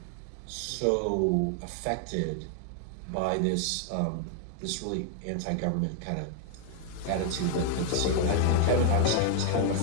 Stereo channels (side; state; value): both; different; correlation 0.00